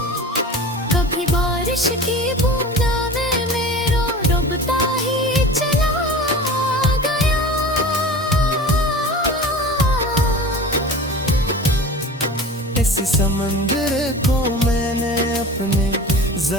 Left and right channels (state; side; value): normal; both; correlation 0.36